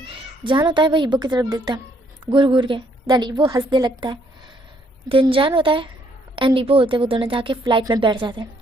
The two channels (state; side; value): normal; both; correlation 0.68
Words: जान होता है वो ईबो की तरफ देखता है घूर घूर के। देन ईबो हंसने लगता है। दिन जान होता है एंड ईबो होते वो दोनों जाके फ़्लाइट में बैठ जाते हैं